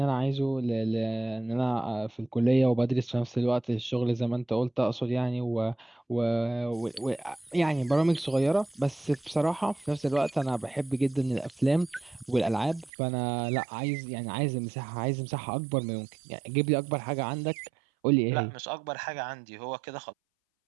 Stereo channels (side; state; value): left; drops out; at 12.9 s